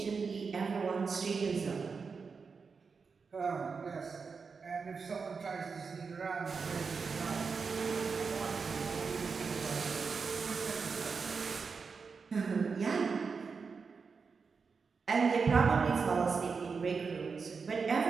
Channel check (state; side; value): quieter; left; 5.2 dB